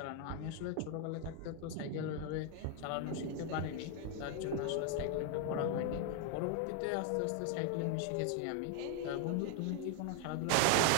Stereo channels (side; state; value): both; different; correlation 0.00